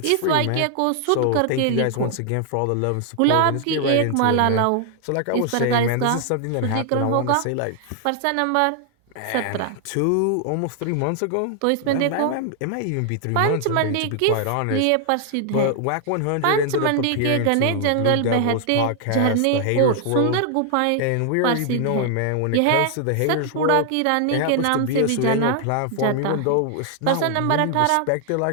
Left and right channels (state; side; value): different; both; correlation 0.00